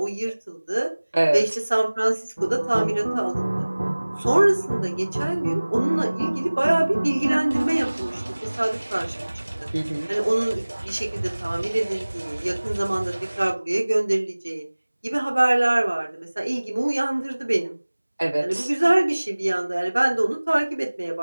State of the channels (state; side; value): inverted; both; correlation -1.00